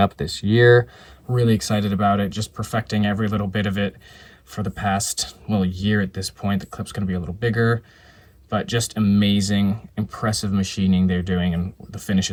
this year. Really excited about it, just perfecting every little bit of it for the past, well, year at this point. The clip's going to be a little bigger, but just amazing, impressive machining they're doing, and the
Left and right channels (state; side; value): identical; both; correlation 1.00